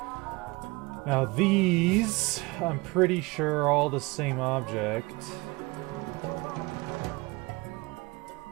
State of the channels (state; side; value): quieter; left; 24.2 dB